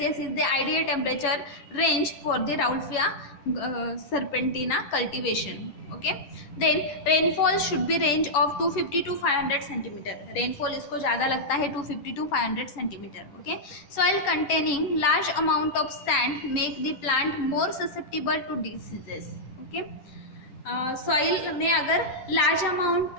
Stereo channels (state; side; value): late; right; 11 ms